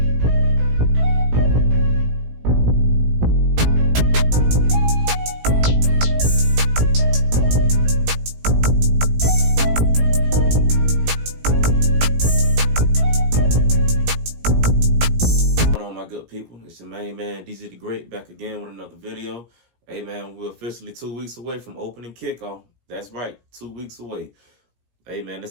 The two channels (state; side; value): late; left; 17 ms